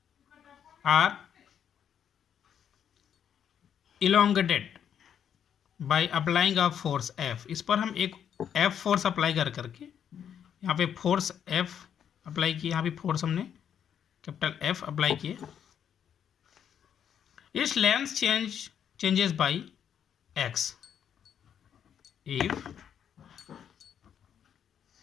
or elongated by applying a force F. इस पर हम एक F फोर्स अप्लाई करके यहाँ पे फोर्स F अप्लाई किए, यहाँ पे फोर्स हमने कैपिटल F अप्लाई किए. Its length changes by x. If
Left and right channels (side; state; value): right; quieter; 8.7 dB